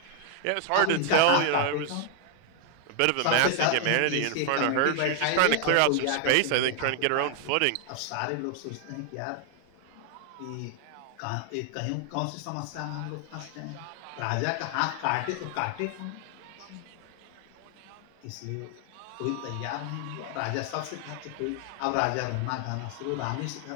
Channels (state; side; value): different; both; correlation 0.00